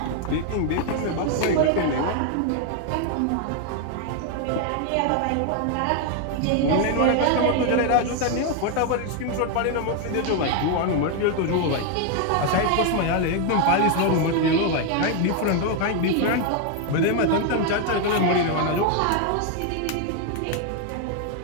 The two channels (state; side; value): different; both; correlation 0.01